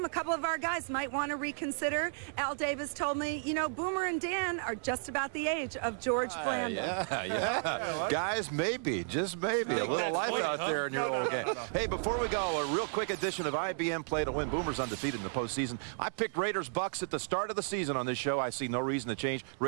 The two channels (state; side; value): silent; left; digital silence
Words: a couple of our guys might want to reconsider. Al Davis told me, Boomer and Dan are just about the age of George Blanda. Yeah. Guys, maybe, just maybe, a little life out there in your old game. Hey, before we go, a real quick edition of IBM Play to Win. Boomers undefeated in the postseason. I picked Raiders-Bucks at the start of the season on this show. I see no reason to change.